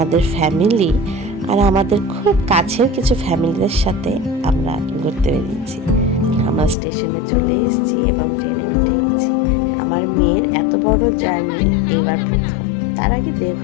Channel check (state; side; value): drops out; right; at 6.8 s